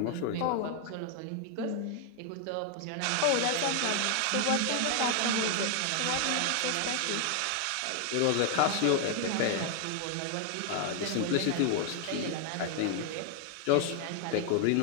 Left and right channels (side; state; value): both; different; correlation 0.00